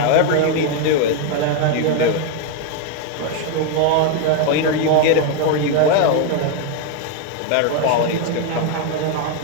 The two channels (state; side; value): different; both; correlation 0.01